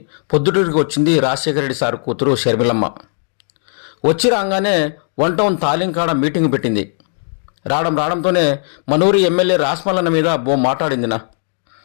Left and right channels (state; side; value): silent; right; digital silence